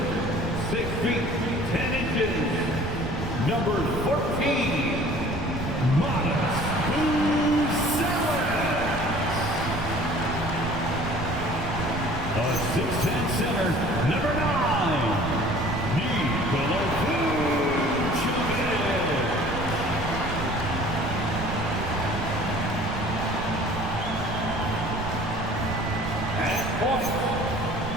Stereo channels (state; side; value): noise; right; rumble, 7 dB below the sound